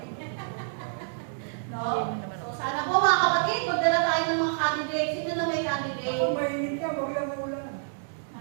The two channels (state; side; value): silent; left; digital silence